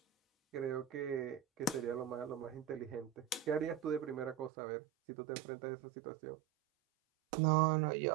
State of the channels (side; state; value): left; drops out; at 4.5 s